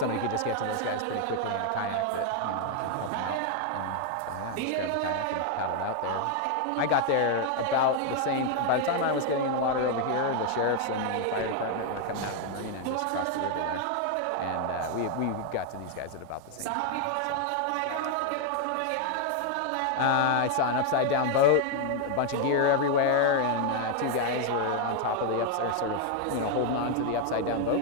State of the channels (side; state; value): both; different; correlation 0.00